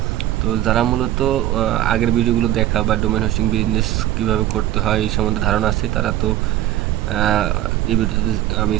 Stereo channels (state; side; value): quieter; left; 13.6 dB